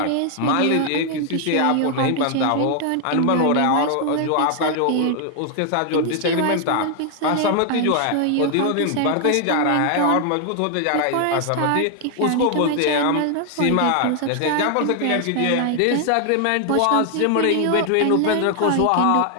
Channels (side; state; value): both; different; correlation 0.00